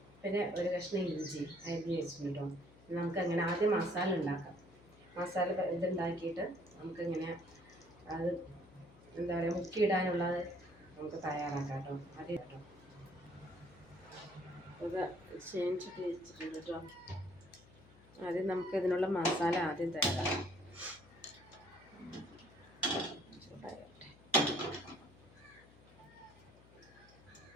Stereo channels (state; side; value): noise; left; hum, 24 dB below the sound